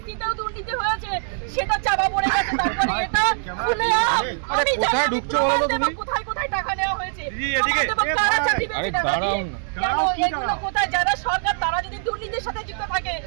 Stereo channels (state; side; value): silent; left; 64 dB below the other